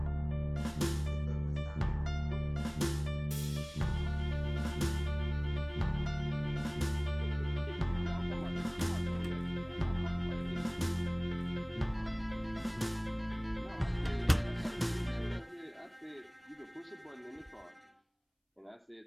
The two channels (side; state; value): both; identical; correlation 1.00